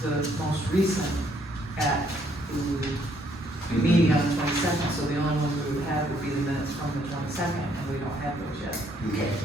the most recent at the meeting on the 22nd, so the only ones we would have would be the minutes from the 22nd, and we don't have those yet. Okay.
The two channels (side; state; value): both; normal; correlation 0.68